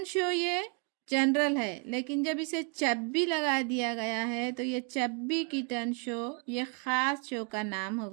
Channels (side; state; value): left; quieter; 34.4 dB